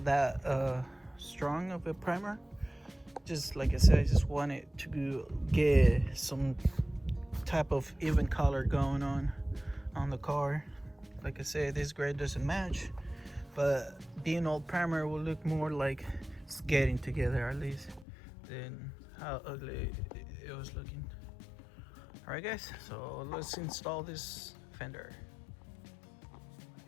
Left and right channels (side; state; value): right; drops out; at 18.1 s